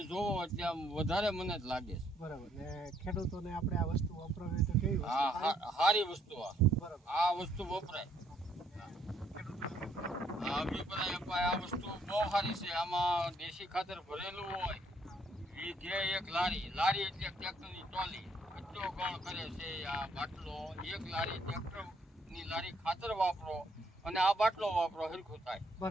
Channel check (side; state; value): both; normal; correlation 0.69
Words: જોવો એટલે આમ વધારે મને જ લાગે છે. બરાબર. ને ખેડૂતોને આપણે આ વસ્તુ વપરાવી તો કેવી વસ્તુ? હા, સારી વસ્તુ. બરાબર. આ વસ્તુ વપરાય. આ વસ્તુ બહુ સારી છે. આમાં દેશી ખાતર ભરેલું હોય. વીઘે 1 લારી એટલે ટ્રેક્ટરની ટ્રોલી એટલો ગણ કરે છે. આ બાટલો 1 લારી, ટ્રેક્ટરની લારી ખાતર વાપરો અને આ બાટલો વાપરો, હરખું થાય.